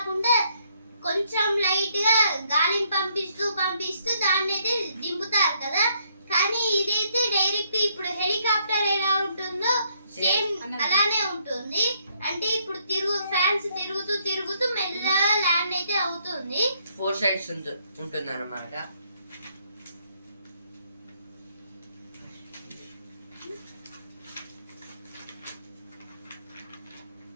కొంచెం లైట్ గా గాలిని పంపిస్తూ దాన్ని అయితే దింపుతారు కదా. కానీ ఇదైతే డైరెక్ట్ ఇప్పుడు హెలికాప్టర్ ఎలా ఉంటుందో సేమ్ అలానే ఉంటుంది. అంటే ఇప్పుడు ఫ్యాన్స్ తిరుగుతూ మెల్లగా ల్యాండ్ అయితే అవుతుంది. 4 సైడ్స్ ఉంటుంది అన్నమాట.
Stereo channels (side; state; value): both; inverted; correlation -0.71